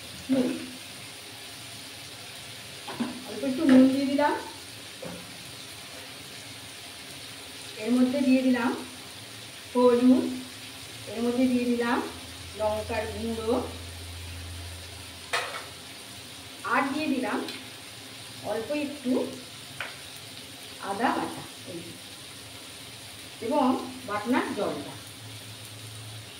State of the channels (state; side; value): identical; both; correlation 1.00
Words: নুন, অল্প একটু নুন দিয়ে দিলাম। এর মধ্যে দিয়ে দিলাম হলুদ, এর মধ্যে দিয়ে দিলাম লঙ্কার গুঁড়ো, আর দিয়ে দিলাম অল্প একটু আদা বাটা এবং বাটনার জলটা।